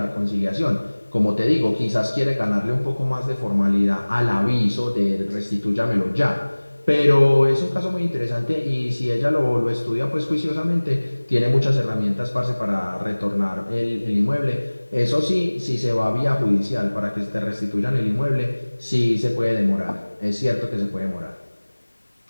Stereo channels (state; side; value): inverted; both; correlation -1.00